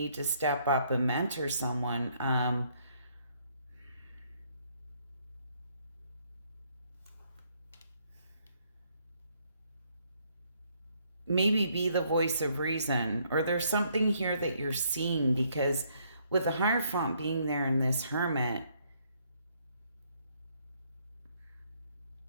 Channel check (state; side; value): inverted; both; correlation -0.69